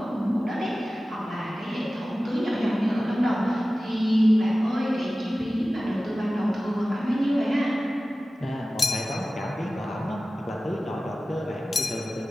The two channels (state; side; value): normal; both; correlation 0.96